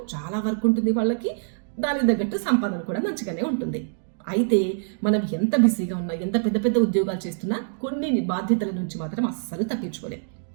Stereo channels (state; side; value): silent; left; digital silence